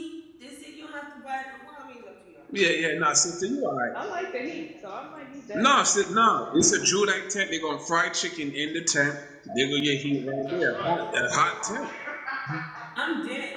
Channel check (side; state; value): both; identical; correlation 1.00